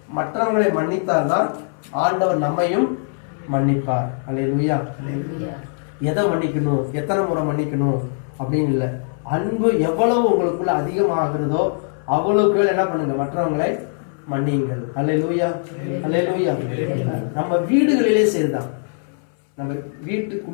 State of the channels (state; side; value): silent; right; 63 dB below the other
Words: மற்றவங்களை மன்னித்தால்தான் ஆண்டவர் நம்மையும் மன்னிப்பார். அல்லேலூயா. எதை மன்னிக்கணும், எத்தனை முறை மன்னிக்கணும் அப்படின்னு இல்லை, அன்பு எவ்வளவு உங்களுக்குள்ள அதிகமாகிறதோ அவ்வளவுக்கு என்ன பண்ணுங்க, மற்றவங்களை மன்னியுங்கள். அல்லேலூயா, அல்லேலூயா. நம்ம வீடுகளிலே சரிதான். நம்ம